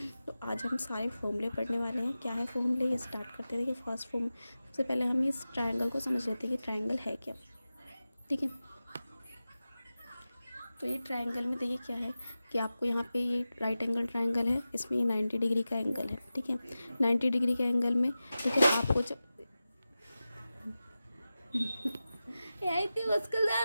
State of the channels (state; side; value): inverted; both; correlation -0.94